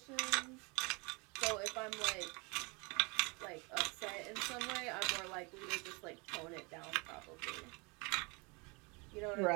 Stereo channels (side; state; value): left; quieter; 29.5 dB